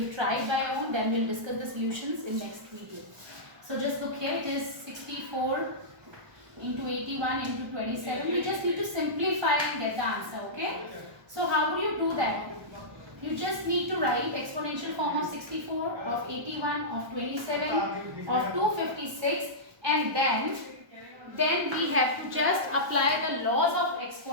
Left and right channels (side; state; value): left; late; 1.1 ms